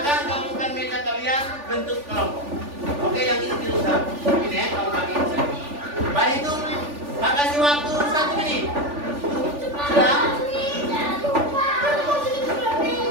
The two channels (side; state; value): left; late; 3.4 ms